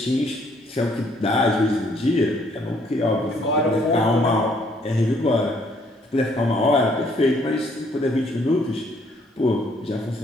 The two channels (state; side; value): normal; both; correlation 0.66